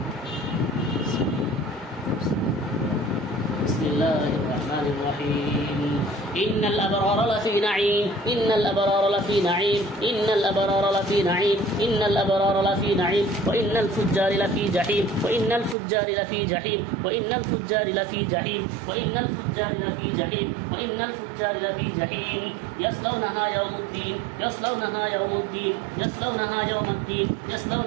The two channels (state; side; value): drops out; left; at 15.8 s